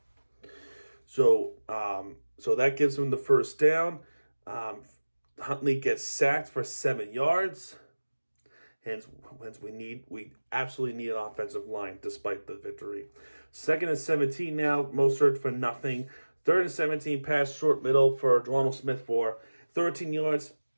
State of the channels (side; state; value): both; inverted; correlation -1.00